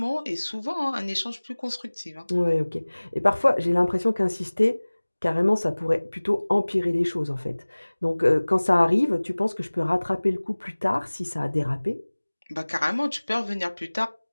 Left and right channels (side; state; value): both; inverted; correlation -1.00